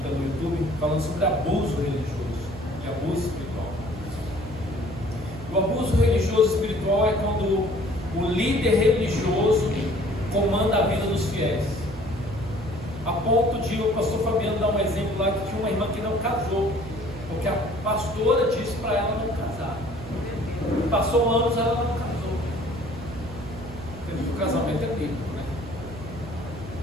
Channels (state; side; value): noise; right; hum, 13 dB below the sound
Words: no YouTube, falando sobre abuso religioso e abuso espiritual. O abuso religioso espiritual é quando o líder religioso comanda a vida dos fiéis, a ponto de o pastor Fabiano dar um exemplo lá, que tinha uma irmã que não casou, porque a pastora disse para ela não casar. Passou anos, ela não casou. Porque o casamento é bíblico, né?